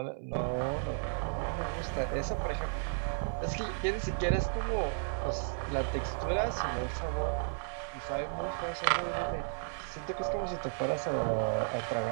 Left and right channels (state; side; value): silent; left; 55 dB below the other